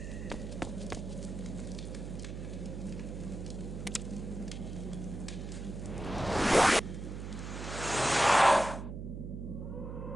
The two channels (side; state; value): right; noise; hum, 7 dB below the sound